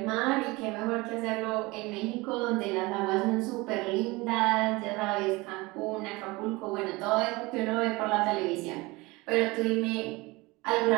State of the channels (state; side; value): quieter; left; 23.0 dB